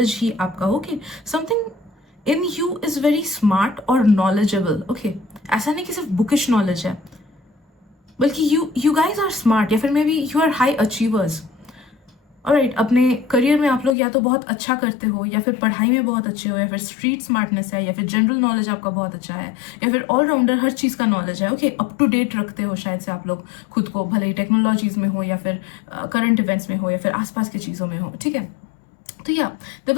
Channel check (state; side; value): drops out; right; at 14.0 s